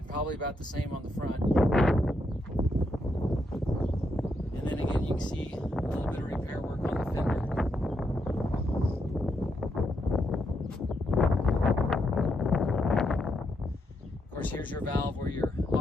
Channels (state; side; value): normal; both; correlation 0.80